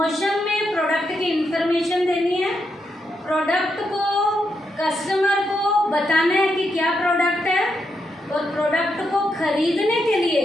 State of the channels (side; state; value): both; normal; correlation 0.82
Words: में प्रोडक्ट की इंफॉर्मेशन देनी है, प्रोडक्ट को कस्टमर को बताना है कि क्या प्रोडक्ट है, और प्रोडक्ट को खरीदने के लिए